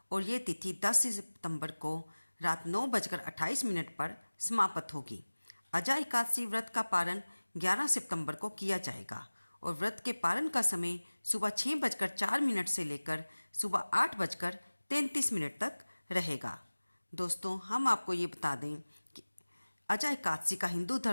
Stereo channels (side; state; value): both; inverted; correlation -1.00